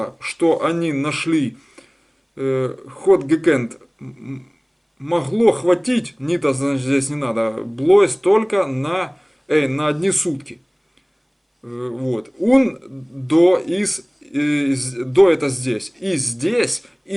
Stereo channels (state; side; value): identical; both; correlation 1.00